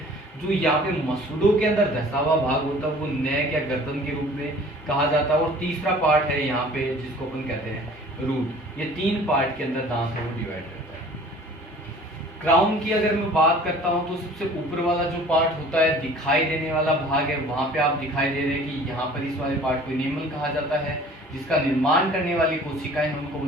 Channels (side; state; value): both; normal; correlation 0.48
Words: जो यहाँ पे मसूड़ों के अंदर धसा हुआ भाग होता है वो नेक या गर्दन के रूप में कहा जाता है। और तीसरा पार्ट है यहाँ पे जिसको अपन कहते हैं रूट। ये 3 पार्ट के अंदर दांत है वो डिवाइड करता है। क्राउन की अगर मैं बात करता हूँ तो सबसे ऊपर वाला जो पार्ट होता है दिखाई देने वाला भाग है, वहां पे आप दिखाई दे रहे हैं कि यहाँ पर इस वाले पार्ट को इनेमल कहा जाता है, जिसका निर्माण करने वाली कोशिकाएं उनको